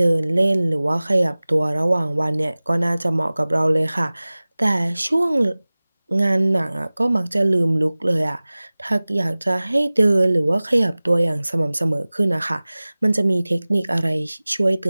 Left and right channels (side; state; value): both; inverted; correlation -0.99